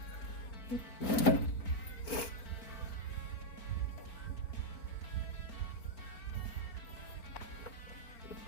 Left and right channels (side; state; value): right; late; 4.4 ms